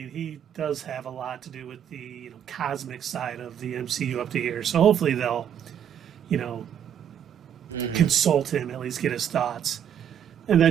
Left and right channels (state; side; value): quieter; left; 9.1 dB